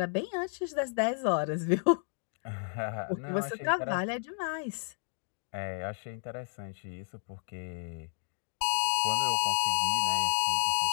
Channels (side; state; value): right; silent; digital silence